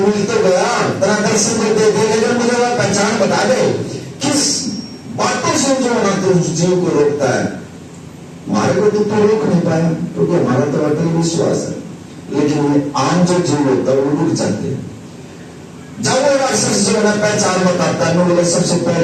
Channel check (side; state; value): both; identical; correlation 1.00